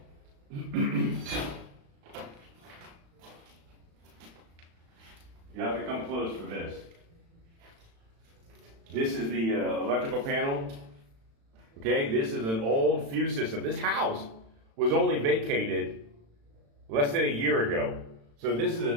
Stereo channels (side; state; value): left; late; 36 ms